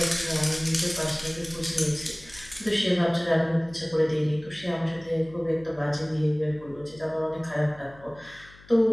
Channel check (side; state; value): left; noise; hum, 23 dB below the sound